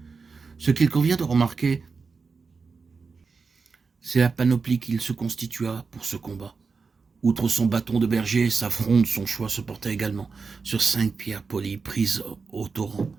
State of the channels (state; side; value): quieter; left; 4.8 dB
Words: Ce qu'il convient de remarquer, c'est la panoplie qu'il se constitua pour ce combat. Outre son bâton de berger, sa fronde, son choix se portait également sur 5 pierres polies prises au torrent.